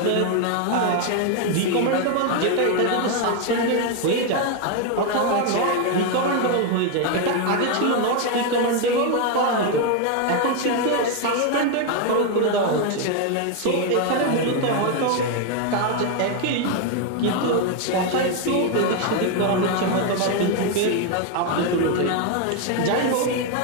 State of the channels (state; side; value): different; both; correlation 0.01